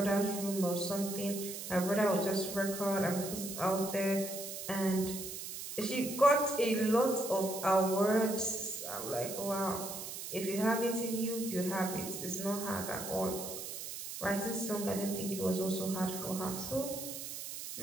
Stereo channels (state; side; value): noise; right; hiss, 8 dB below the sound